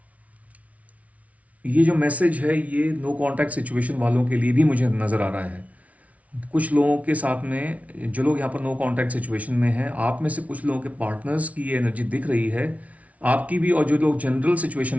ये जो मैसेज है ये नो कांटेक्ट सिचुएशन वालों के लिए भी मुझे नज़र आ रहा है। कुछ लोगों के साथ में जो लोग यहाँ पर नो कांटेक्ट सिचुएशन में हैं, आप में से कुछ लोगों के पार्टनर्स की ये एनर्जी दिख रही है, आपकी भी, और जो लोग जनरल सिचुएशन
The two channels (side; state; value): left; late; 0.067 ms